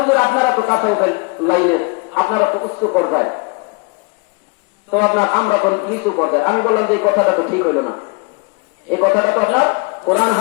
আপনারা তো তাসাউফের লাইনের, আপনারা তো উচ্চ পর্যায়ে, তো আপনার আমরা কোন নিচু পর্যায়ে। আমি বললাম যে এই কথাটা তো ঠিক হইল না। এই কথাটা তো আপনার কোরআন,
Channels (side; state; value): right; quieter; 30.8 dB